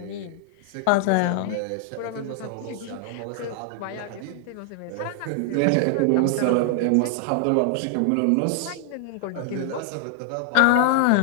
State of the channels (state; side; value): different; both; correlation 0.00